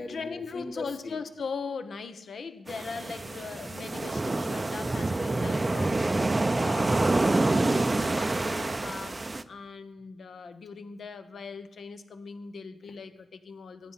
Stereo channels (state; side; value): normal; both; correlation 0.96